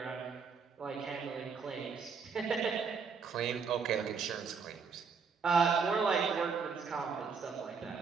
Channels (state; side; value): quieter; left; 5.6 dB